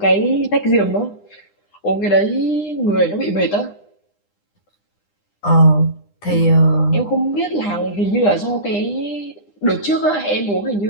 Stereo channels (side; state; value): right; late; 9.9 ms